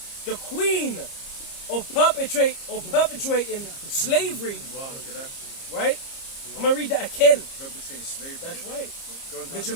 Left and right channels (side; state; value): right; late; 30 ms